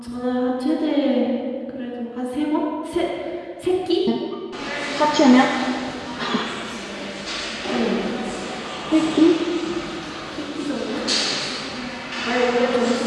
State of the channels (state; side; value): identical; both; correlation 1.00